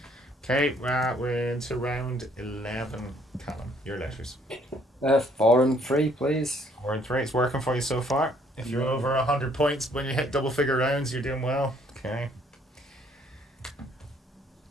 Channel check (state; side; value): normal; both; correlation 0.64